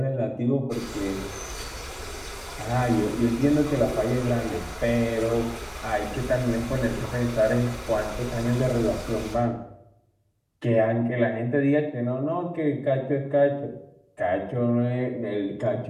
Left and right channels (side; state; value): both; identical; correlation 1.00